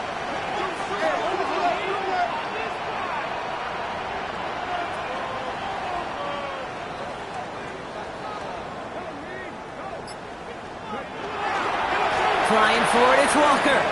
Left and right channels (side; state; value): both; identical; correlation 1.00